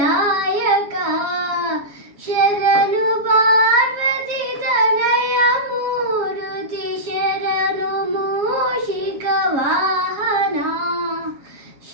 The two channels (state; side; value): late; left; 7.2 ms